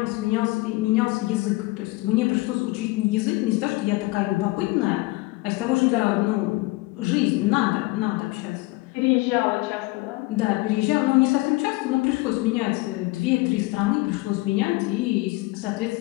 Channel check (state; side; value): quieter; right; 22.0 dB